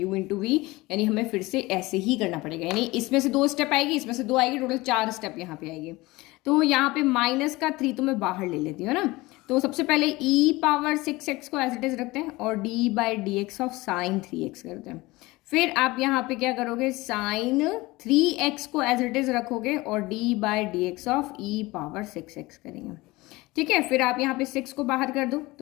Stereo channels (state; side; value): quieter; right; 21.1 dB